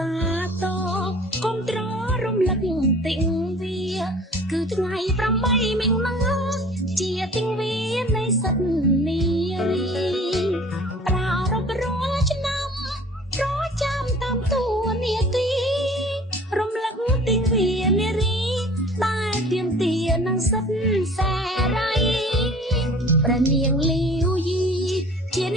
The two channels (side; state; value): both; normal; correlation 0.47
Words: ាទកុំត្ររំលឹកទិញវាគឺថ្ងៃ8មិញណាជាទិញវានៃសិទ្ធនារីប្រារព្ធរាល់ឆ្នាំប្រចាំតាមតួនាទីរំលឹកទិញវានារីដែលទៀមទានឹងសិទ្ធសេរីព្រះនាងលាវយីជាន